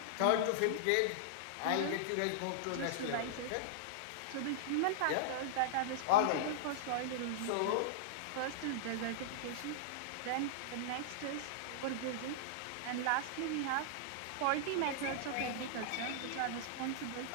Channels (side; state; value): both; different; correlation -0.02